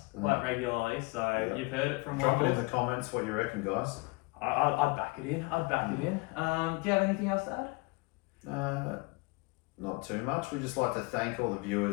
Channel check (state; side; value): quieter; right; 26.5 dB